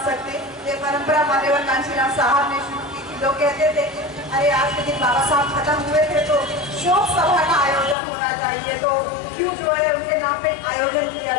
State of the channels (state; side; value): drops out; right; at 8.0 s